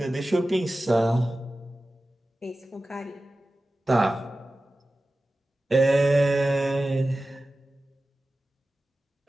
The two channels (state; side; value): normal; both; correlation 0.95